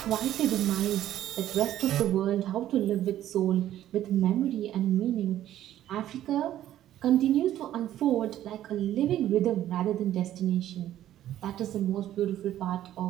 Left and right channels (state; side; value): quieter; left; 12.4 dB